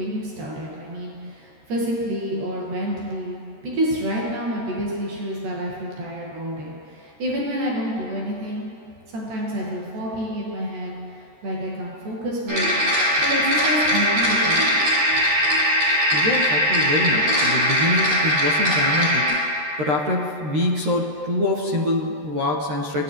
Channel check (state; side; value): late; left; 13 ms